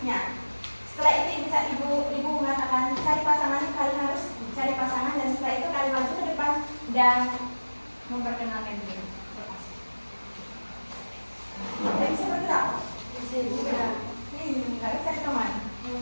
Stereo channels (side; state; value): both; inverted; correlation -1.00